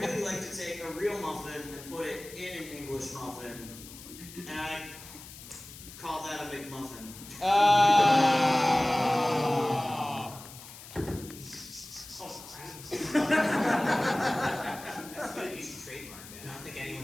like to take a real muffin and put it in an English muffin, and I call that a McMuffin. That's good. You should trademark that. I don't think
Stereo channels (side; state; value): left; noise; hiss, 16 dB below the sound